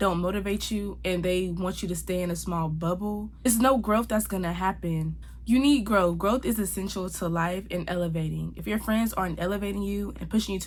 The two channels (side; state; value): both; identical; correlation 1.00